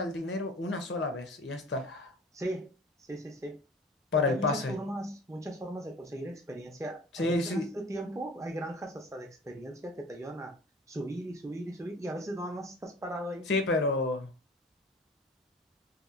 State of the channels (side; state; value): both; normal; correlation 0.43